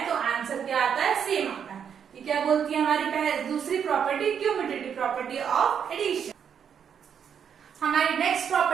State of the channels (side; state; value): left; quieter; 7.8 dB